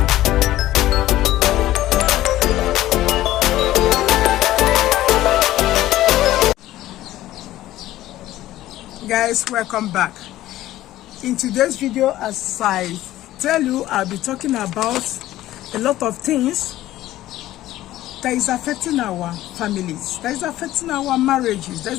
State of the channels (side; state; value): right; quieter; 14.8 dB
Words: Guys, welcome back. In today's video, as I tell you, I'll be talking about a lot of things that is affecting our families, that is affecting our marriages, that